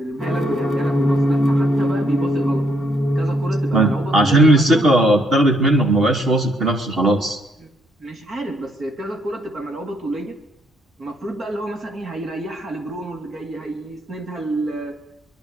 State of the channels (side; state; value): both; normal; correlation 0.72